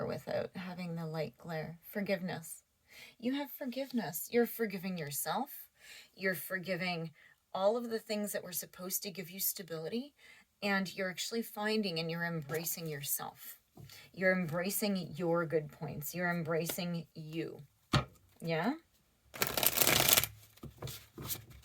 without having the light glare. Forgiveness. You have forgiveness. You're forgiving yourself. You're forgiving all of the things that were supposed to give you stability. And you're actually finding and you're embracing yourself. You're embracing your good points. You're embracing you. Yeah?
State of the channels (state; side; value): identical; both; correlation 1.00